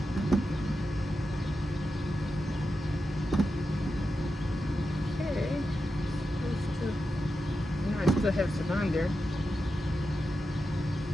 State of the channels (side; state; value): both; normal; correlation 0.89